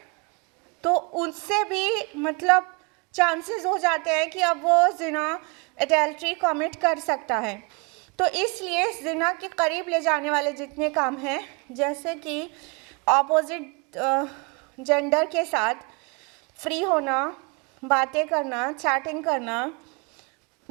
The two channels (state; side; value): quieter; left; 31.8 dB